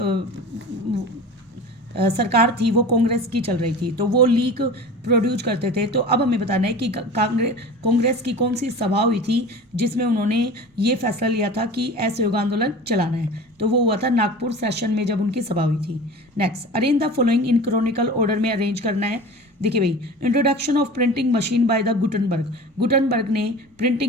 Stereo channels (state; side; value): normal; both; correlation 0.36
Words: सरकार थी वो कांग्रेस की चल रही थी, तो वो लीक प्रोड्यूस करते थे। तो अब हमें बताना है कि कांग्रेस की कौन सी सभा हुई थी जिसमें उन्होंने ये फैसला लिया था कि असहयोग आंदोलन चलाना है। तो वो हुआ था नागपुर सेशन में जब उनकी सभा हुई थी। Next, arrange the following in chronicle order में अरेंज करना है। देखिए भाई, introduction of printing machine by the Gutenberg ने